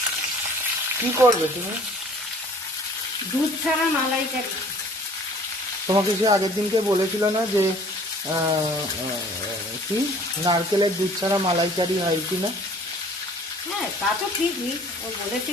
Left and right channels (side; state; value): both; normal; correlation 0.52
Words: কি করবে তুমি? দুধ ছাড়া মালাইকারি। তোমাকে সে আগের দিনকে বলেছিল না যে কি নারকেলের দুধ ছাড়া মালাইকারি হয় কিনা? হ্যাঁ, তা তো ঠিকই, ও